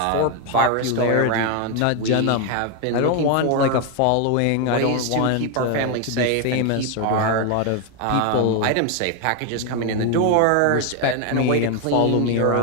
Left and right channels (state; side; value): different; both; correlation 0.01